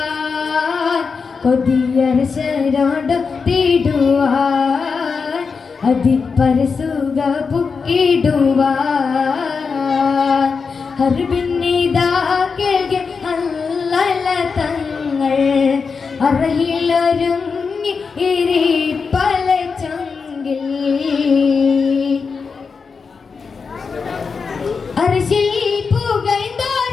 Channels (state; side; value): quieter; right; 5.2 dB